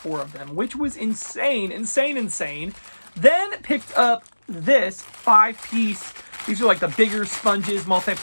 of them, which was insane, insane. Then picked up this 5-piece. These are like the bigger sponges,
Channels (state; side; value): inverted; both; correlation -1.00